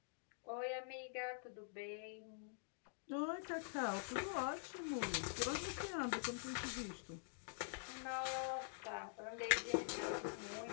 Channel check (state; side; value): silent; right; digital silence